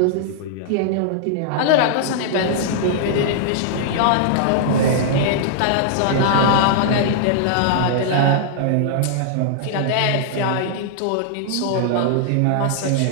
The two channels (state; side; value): different; both; correlation -0.01